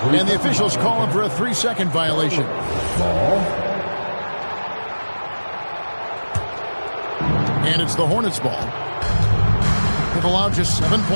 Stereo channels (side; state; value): both; inverted; correlation -1.00